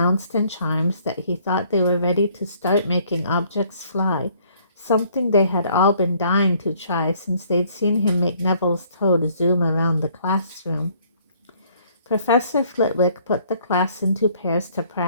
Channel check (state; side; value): inverted; both; correlation -0.62